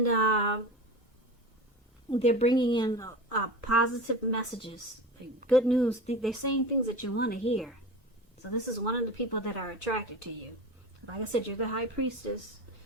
they're bringing in positive messages, good news. They're saying things that you want to hear. So this is one of the people that are attracted to you. Like I said, you're the High Priestess.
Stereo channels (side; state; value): both; normal; correlation 0.31